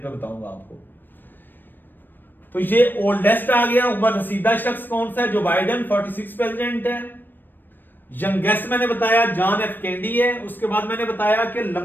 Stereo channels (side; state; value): right; late; 0.093 ms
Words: पे बताऊंगा आपको। तो ये ओल्डेस्ट आ गया, उम्र रसीदा शख्स कौन सा है? जो बाइडेन 46 प्रेसिडेंट है। यंगेस्ट मैंने बताया जॉन एफ कैंडी है। उसके बाद मैंने बताया कि